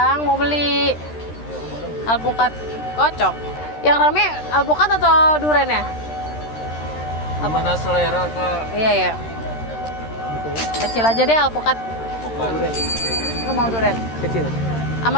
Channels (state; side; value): late; right; 13 ms